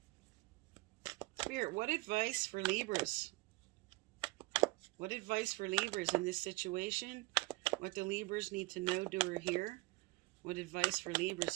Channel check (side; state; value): left; quieter; 23.2 dB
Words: Spirit, what advice for Libras? What advice for Libras in this situation? What do Libras need to know, do, or hear? What advice for Libras